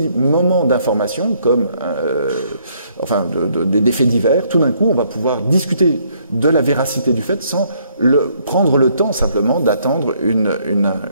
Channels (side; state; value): both; inverted; correlation -0.68